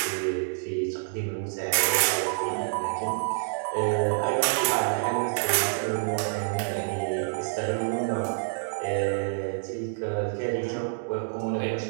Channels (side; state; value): left; silent; digital silence